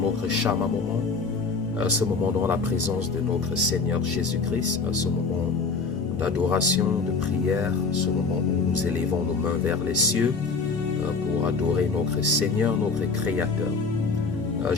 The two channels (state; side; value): quieter; right; 4.4 dB